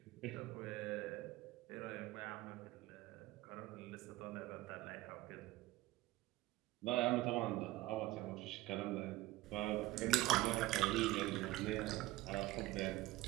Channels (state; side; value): quieter; left; 17.5 dB